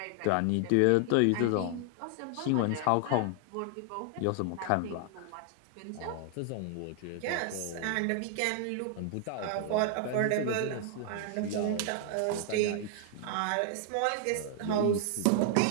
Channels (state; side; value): different; both; correlation 0.00